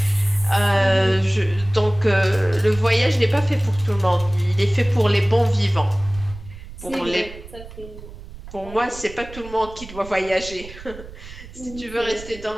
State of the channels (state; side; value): noise; right; rumble, 15 dB below the sound